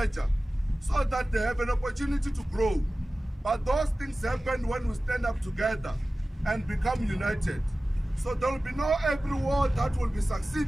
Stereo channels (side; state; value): both; normal; correlation 0.96